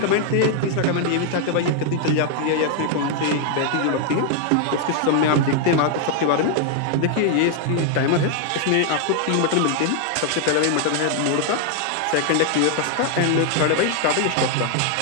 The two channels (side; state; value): both; different; correlation 0.00